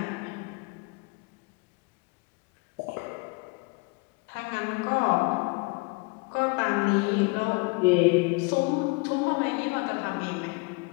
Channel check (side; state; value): right; quieter; 28.7 dB